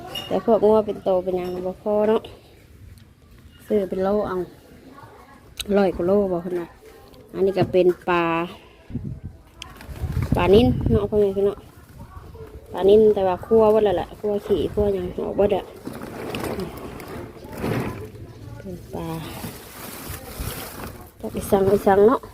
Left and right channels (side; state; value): both; identical; correlation 1.00